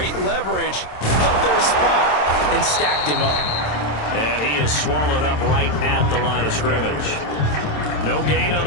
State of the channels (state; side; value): late; right; 27 ms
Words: leverage, held their spot, and stacked him up. And he is swallowed up right at the line of scrimmage. No gain on